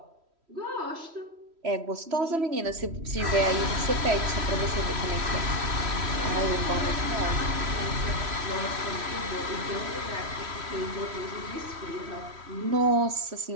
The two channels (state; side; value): late; left; 3.1 ms